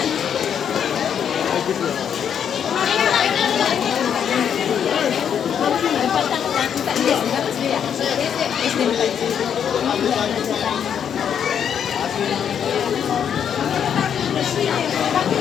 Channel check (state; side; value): quieter; right; 8.3 dB